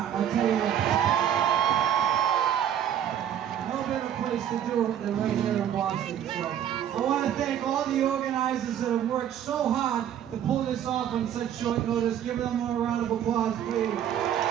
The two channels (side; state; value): left; quieter; 9.9 dB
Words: I'll tell you that. No better place to do it than right here in Boston. So I want to thank all the organizers that have worked so hard to pull this off on such short notice. Give them a round of applause, please.